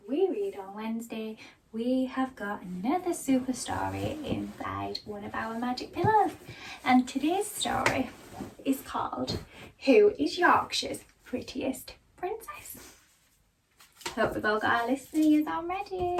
We Read on Wednesday, we have got another super story inside one of our magic pillows. And today's story is called Who is Yorkshire's Prettiest Princess? Hope we've all got our listeners on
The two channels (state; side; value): identical; both; correlation 1.00